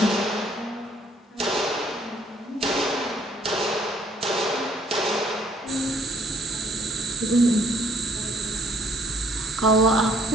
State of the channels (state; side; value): normal; both; correlation 0.62